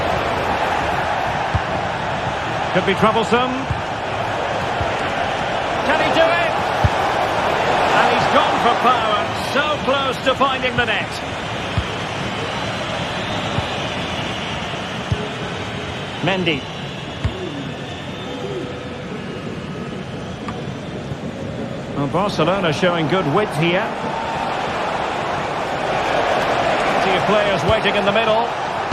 Could be troublesome. Can he do it? And he's gone for power. So close to finding the net. Mendy. Well, Barcelona showing good width here. Plenty of players waiting in the middle.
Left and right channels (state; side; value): identical; both; correlation 1.00